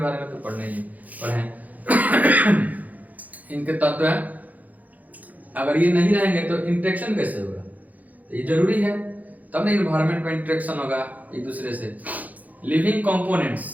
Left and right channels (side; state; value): left; late; 0.079 ms